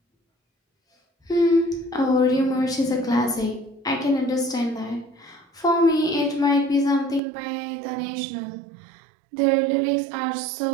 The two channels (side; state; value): left; drops out; at 7.2 s